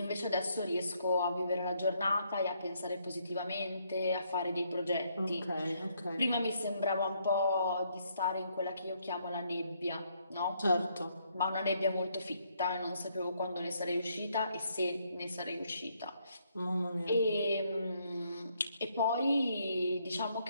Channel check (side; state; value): both; inverted; correlation -0.72